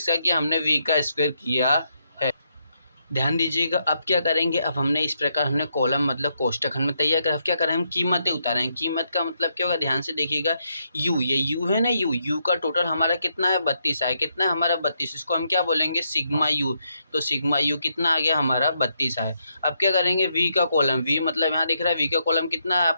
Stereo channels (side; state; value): both; inverted; correlation -0.79